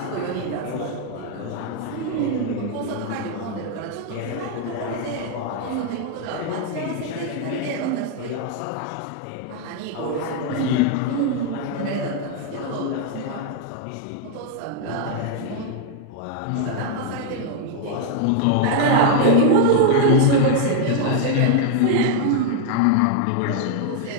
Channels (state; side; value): different; both; correlation 0.00